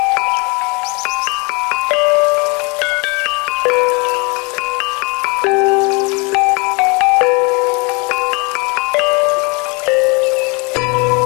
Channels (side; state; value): right; quieter; 30.1 dB